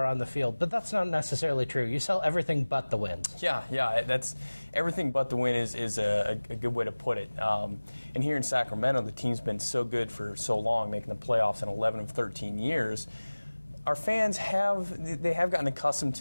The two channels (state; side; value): inverted; both; correlation -1.00